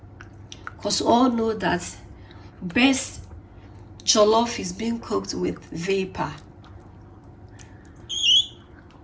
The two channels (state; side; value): identical; both; correlation 1.00